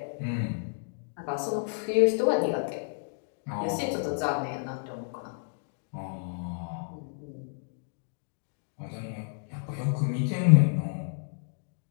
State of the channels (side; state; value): right; silent; digital silence